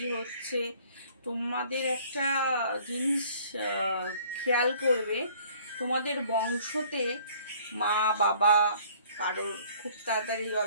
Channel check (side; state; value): both; inverted; correlation -0.56